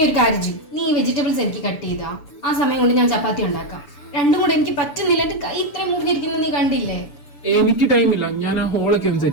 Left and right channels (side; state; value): right; late; 6.9 ms